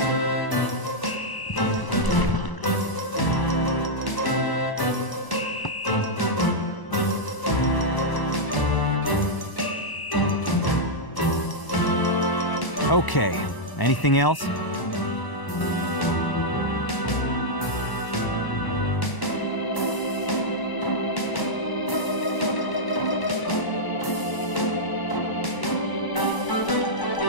Okay, anything else?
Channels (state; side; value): late; right; 1.0 ms